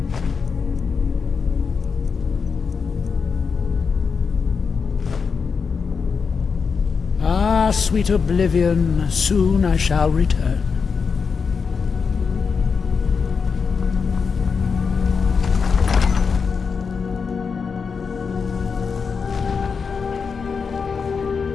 Ah, sweet oblivion, soon I shall return.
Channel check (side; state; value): right; quieter; 5.5 dB